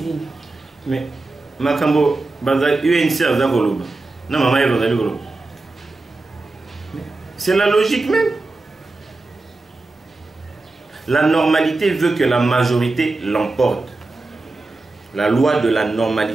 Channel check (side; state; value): left; quieter; 3.3 dB